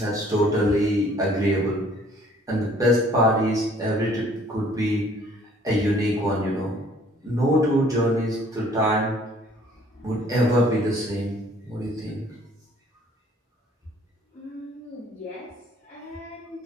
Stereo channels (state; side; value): normal; both; correlation 0.57